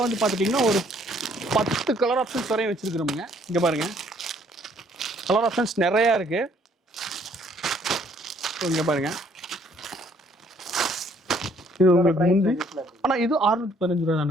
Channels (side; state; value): both; normal; correlation 0.63